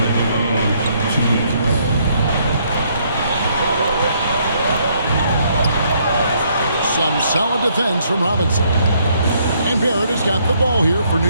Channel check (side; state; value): both; inverted; correlation -0.69